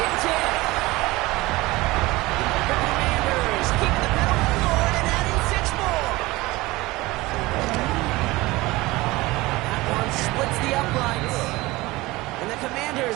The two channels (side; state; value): left; quieter; 20.5 dB